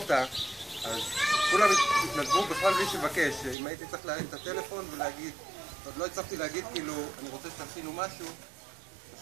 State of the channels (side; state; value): left; drops out; at 3.6 s